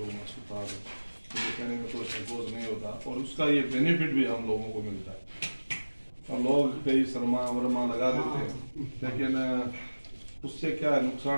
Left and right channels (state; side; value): inverted; both; correlation -1.00